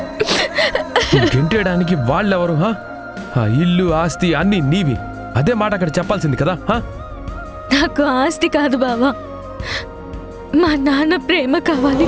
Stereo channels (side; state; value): both; identical; correlation 1.00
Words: గెంటేయడానికి వాళ్ళెవరు? ఇల్లు ఆస్తి అన్ని నీవి. అదే మాట అక్కడ చెప్పాల్సింది కదా. నాకు ఆస్తి కాదు బావా, మా నాన్న ప్రేమ కావాలి.